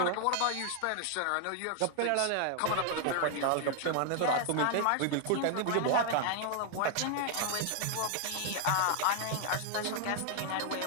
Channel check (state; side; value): different; both; correlation 0.00